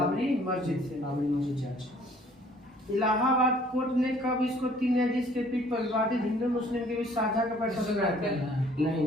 से। बाबरी मस्जिद जांच। इलाहाबाद कोर्ट ने कब इसको 3 न्यायाधीश के पीठ पर विवादित हिंदू मुस्लिम के बीच साझा का फैसला सुनाया था? नहीं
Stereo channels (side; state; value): both; normal; correlation 0.58